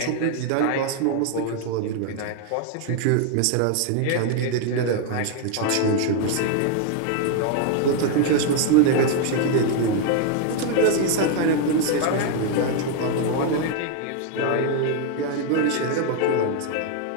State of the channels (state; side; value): different; both; correlation 0.00